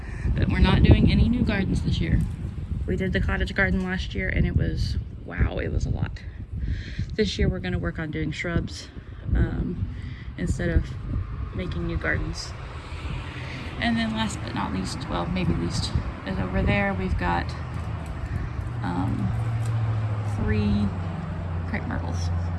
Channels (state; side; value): identical; both; correlation 1.00